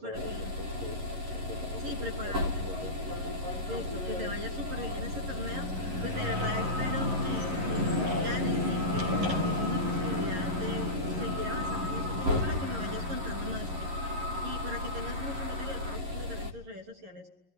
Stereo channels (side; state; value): left; late; 11 ms